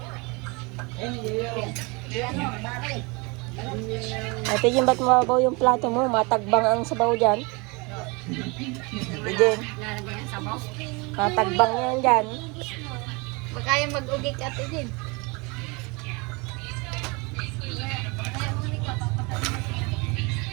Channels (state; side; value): quieter; left; 28.1 dB